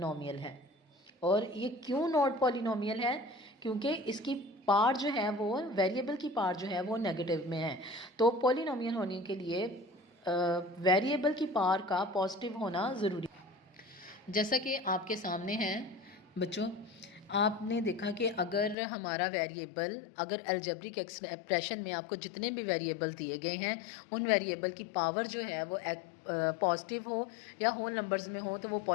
है। और ये क्यों नॉट पॉलिनोमियल है? क्योंकि इसकी पार जो है वो वेरिएबल की पार जो है वो नेगेटिव में है। तो पॉलिनोमियल होने के लिए वेरिएबल की पार का पॉजिटिव होना ज़रूरी। जैसा कि आपके सामने है बच्चों, आपने देखा कि अगर हमारा वेरिएबल, अगर अलजेब्रिक एक्सप्रेशन में आपको जितने भी वेरिएबल दिए गए हैं उन वेरिएबल की पावर जो है वो पॉजिटिव हो या होल नंबर्स में हो तो वो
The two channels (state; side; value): drops out; right; at 18.8 s